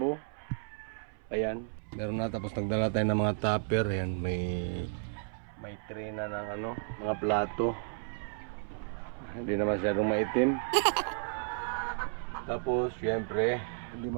Ayan. Meron na, tapos nagdala tayo ng mga tupper. Ayan, may tray na ng mga plato. Hindi na masyadong maitim. Tapos, syempre, hindi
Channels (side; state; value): left; silent; 56 dB below the other